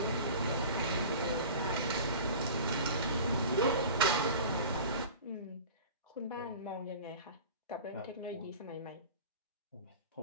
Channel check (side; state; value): both; inverted; correlation -0.37